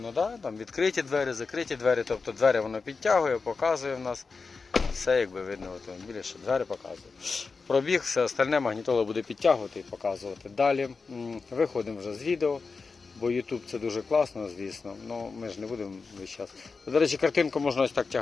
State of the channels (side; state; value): right; quieter; 4.6 dB